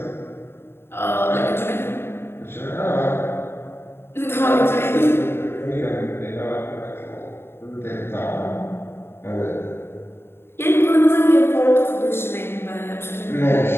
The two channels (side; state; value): right; late; 0.11 ms